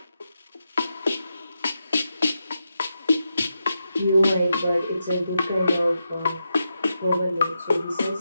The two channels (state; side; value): inverted; both; correlation -0.87